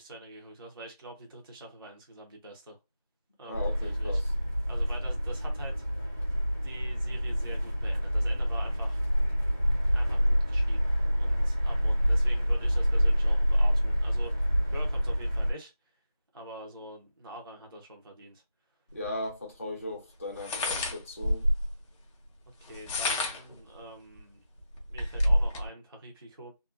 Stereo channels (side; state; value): both; inverted; correlation -0.95